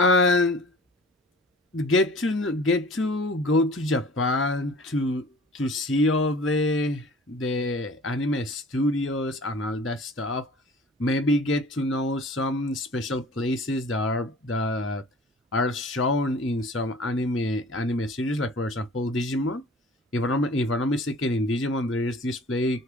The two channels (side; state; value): both; normal; correlation 0.46